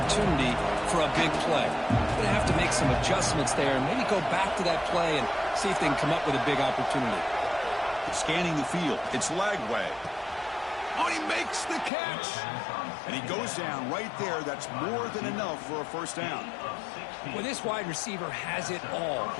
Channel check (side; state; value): right; drops out; at 11.9 s